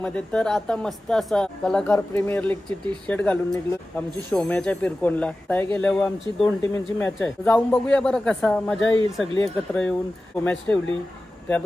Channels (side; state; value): both; normal; correlation 0.95